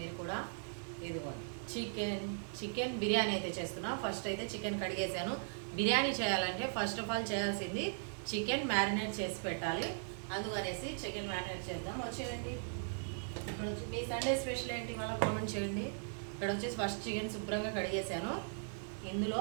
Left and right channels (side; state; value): left; silent; 52 dB below the other